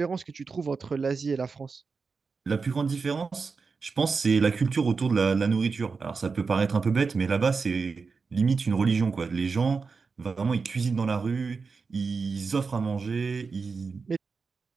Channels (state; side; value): quieter; left; 4.8 dB